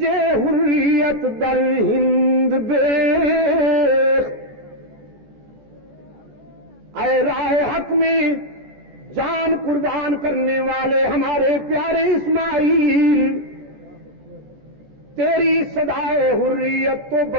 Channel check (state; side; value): late; left; 14 ms